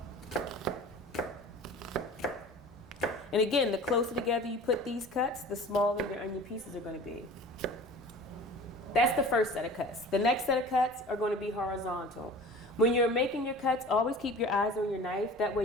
And again, the closer together you put these cuts, the smaller your onion pieces are going to be. That's the first set of cuts. The next set of cuts are going to be horizontal. When you're making your cuts, always keep your eyes on your knife. That way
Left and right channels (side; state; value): both; normal; correlation 0.40